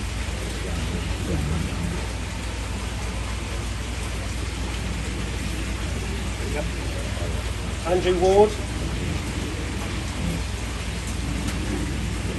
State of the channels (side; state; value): both; identical; correlation 1.00